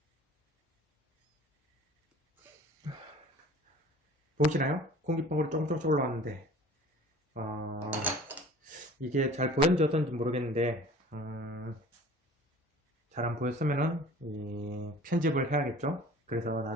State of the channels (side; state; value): both; normal; correlation 0.45